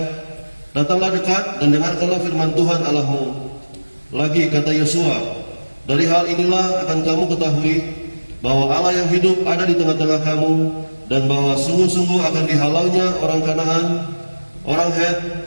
datanglah dekat dan dengarkanlah firman Tuhan Allahmu. Lagi kata Yosua, dari hal inilah akan kamu ketahui bahwa Allah yang hidup ada di tengah-tengah kamu, dan bahwa sungguh-sungguh akan dihalaunya orang Kanaan, orang Het,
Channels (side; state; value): both; inverted; correlation -1.00